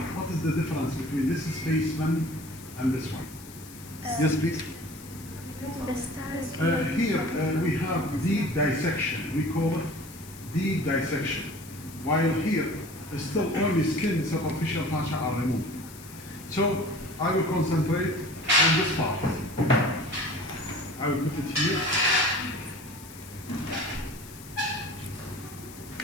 what is the difference between this spaceman and this one? Yes, please. The stars. Here we have deep dissection. We call it deep dissection. While here, still only skin, superficial fascia are removed. So I will concentrate on this part. I will put it here.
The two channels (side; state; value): left; noise; hiss, 18 dB below the sound